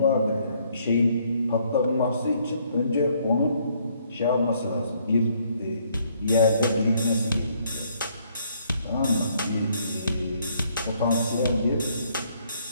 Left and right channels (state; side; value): inverted; both; correlation -0.68